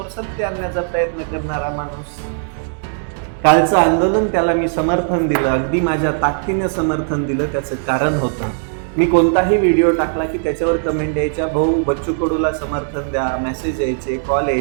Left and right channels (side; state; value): left; silent; digital silence